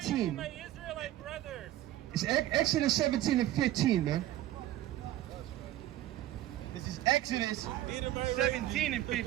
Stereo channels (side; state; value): left; quieter; 14.0 dB